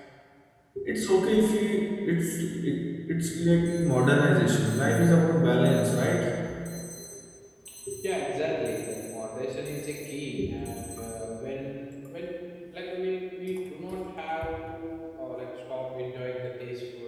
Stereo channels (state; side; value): identical; both; correlation 1.00